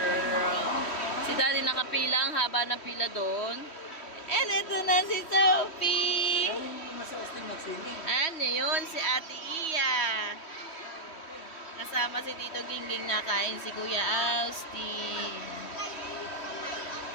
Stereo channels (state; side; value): late; right; 3.1 ms